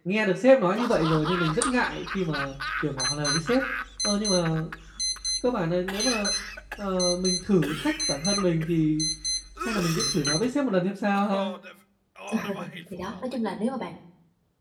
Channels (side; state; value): both; identical; correlation 1.00